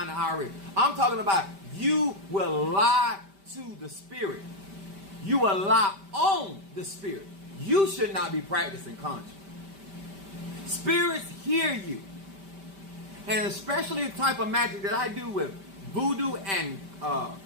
to IRS. I'm talking about you will lie to the spirit. You will lie on the spirit. You should not be practicing conjuring. Spirits hear you. And especially the type of magic that I do with voodoo and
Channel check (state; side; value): late; left; 5.1 ms